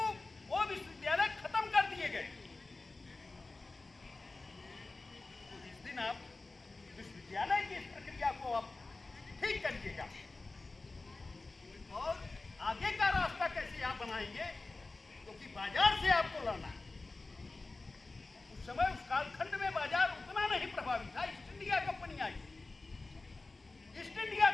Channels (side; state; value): right; quieter; 3.4 dB